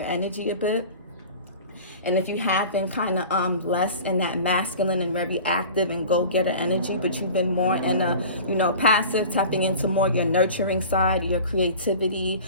energy a bit, And if you have been kind of less in that masculine and very active and go-getter energy, but you've been more in a, you know, passive, tapping into more your nurturing side, your creativity,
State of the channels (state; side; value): inverted; both; correlation -0.39